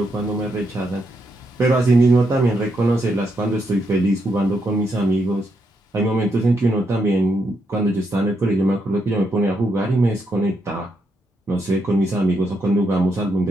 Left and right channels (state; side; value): normal; both; correlation 0.80